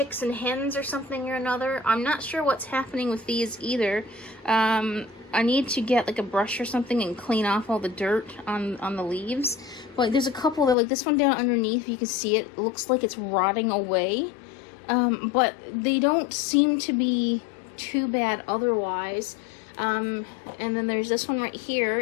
and hens, or something or another. I'm not sure what's happening with these either. I need to get like a brush or something and clean off all the dirt on the leaves. But there's a couple that, like this one down underneath, you can see it looks like it's rotting away. But they don't seem to be too bad otherwise. And then there's this one right here.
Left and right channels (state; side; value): drops out; right; at 10.8 s